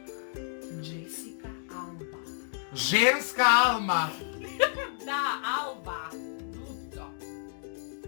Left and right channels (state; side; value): silent; right; digital silence